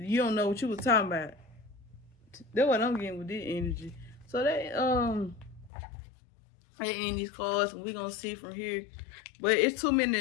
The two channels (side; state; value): right; drops out; at 5.7 s